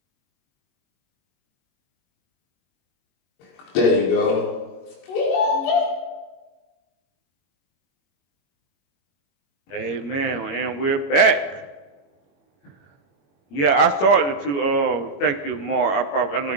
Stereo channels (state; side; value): late; right; 21 ms